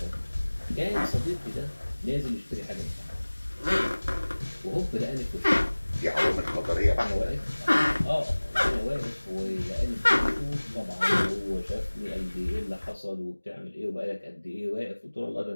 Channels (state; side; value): inverted; both; correlation -1.00